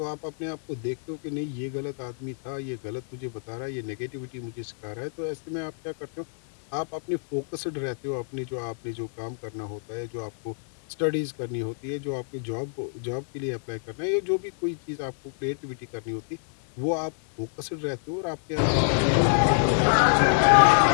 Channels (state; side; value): silent; right; digital silence